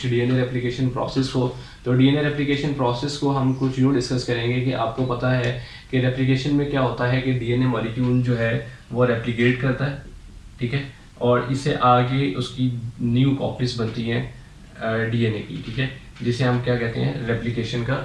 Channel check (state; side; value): identical; both; correlation 1.00